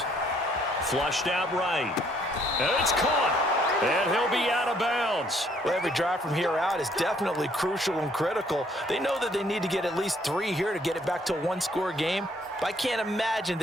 Flushed out right. And it's caught. And he'll be out of bounds. Well, every drive from here out is definitely crucial and critical. They know that they need to get at least 3 here to get it back to a one-score game. But I can't imagine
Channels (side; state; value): both; normal; correlation 0.65